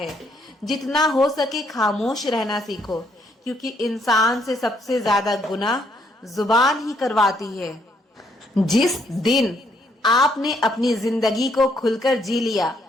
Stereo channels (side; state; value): both; normal; correlation 0.71